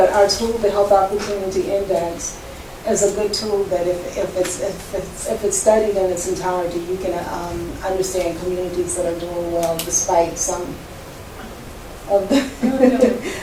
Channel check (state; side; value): identical; both; correlation 1.00